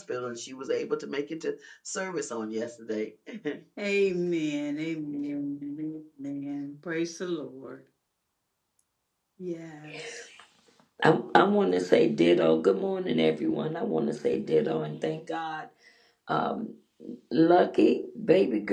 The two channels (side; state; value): both; identical; correlation 1.00